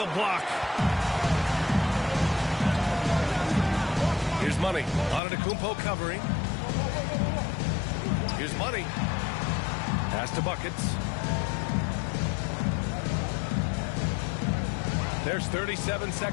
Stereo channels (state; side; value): drops out; right; at 5.2 s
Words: block. Here's Money. Antetokounmpo covering. Here's Money. Pass to Buckets. There's 37